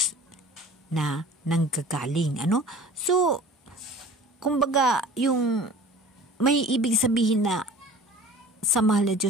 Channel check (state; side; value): normal; both; correlation 0.44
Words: na nanggagaling. So, kumbaga, yung may ibig sabihin na sa mahal na